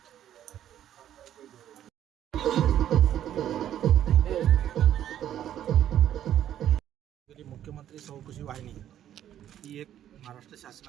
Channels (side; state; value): left; quieter; 11.0 dB